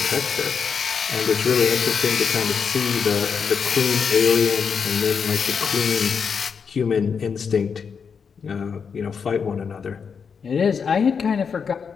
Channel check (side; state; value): right; quieter; 6.2 dB